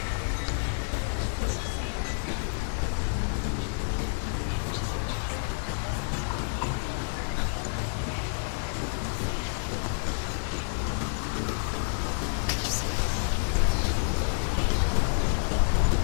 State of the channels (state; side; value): silent; right; digital silence